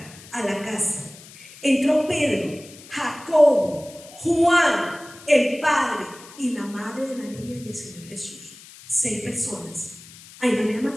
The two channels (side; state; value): left; noise; hiss, 20 dB below the sound